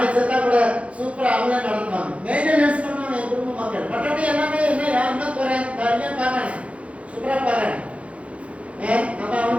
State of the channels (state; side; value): late; left; 0.063 ms